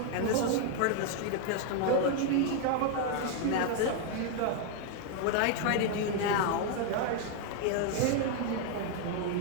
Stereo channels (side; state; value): both; different; correlation 0.00